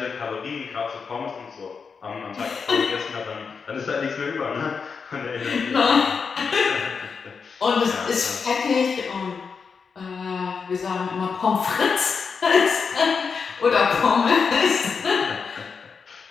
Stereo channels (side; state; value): right; quieter; 5.6 dB